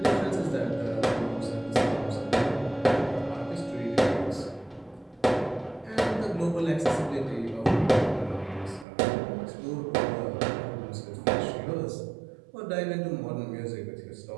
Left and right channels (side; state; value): left; drops out; at 8.8 s